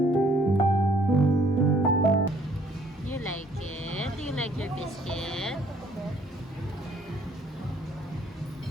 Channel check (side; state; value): both; normal; correlation 0.62